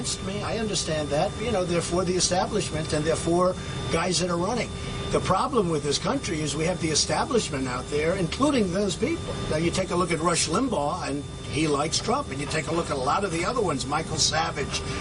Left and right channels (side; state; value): both; identical; correlation 1.00